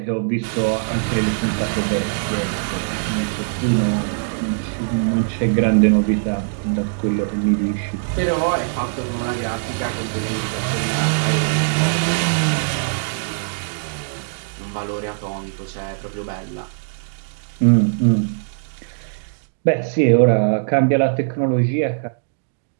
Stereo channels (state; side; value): silent; left; digital silence